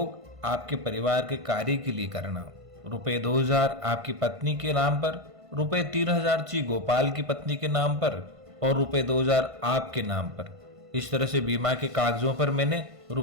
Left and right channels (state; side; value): late; left; 1.5 ms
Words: आपके परिवार के कार्य के लिए करना। रुपये 2000 आपकी पत्नी के नाम पर, रुपये 3000 ची गोपाल की पत्नी के नाम पर और रुपये 2000 आपके नाम पर। इस तरह से बीमा के कागजों पर मैंने